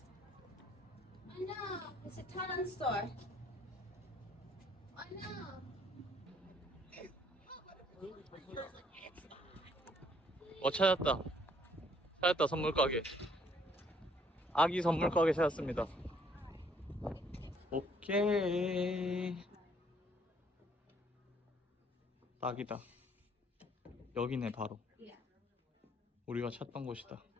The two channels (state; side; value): normal; both; correlation 0.64